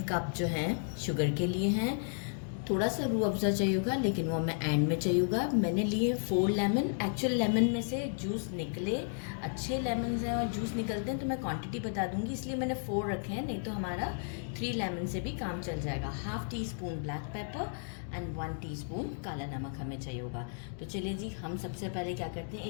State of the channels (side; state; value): right; silent; digital silence